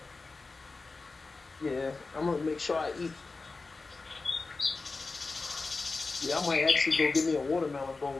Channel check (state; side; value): quieter; right; 3.8 dB